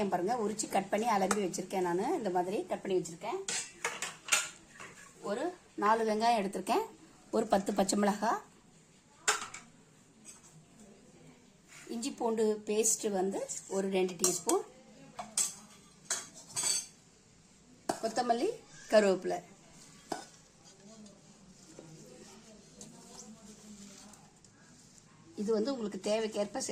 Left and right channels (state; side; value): identical; both; correlation 1.00